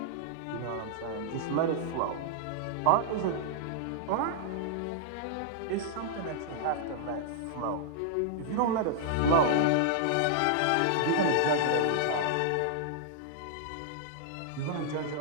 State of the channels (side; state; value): both; different; correlation -0.01